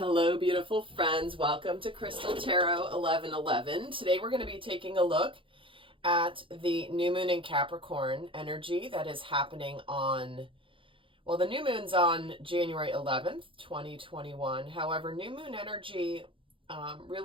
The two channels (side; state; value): left; late; 0.25 ms